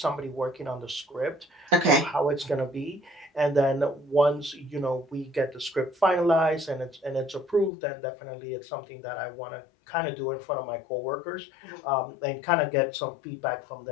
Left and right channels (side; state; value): right; drops out; at 7.7 s